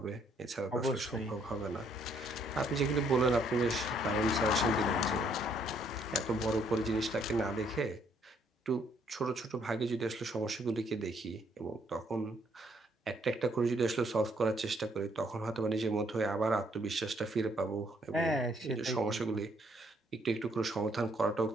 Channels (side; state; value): both; normal; correlation 0.68